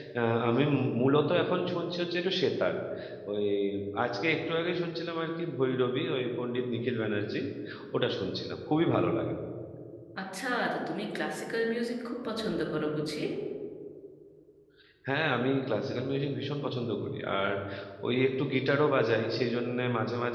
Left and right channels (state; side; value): identical; both; correlation 1.00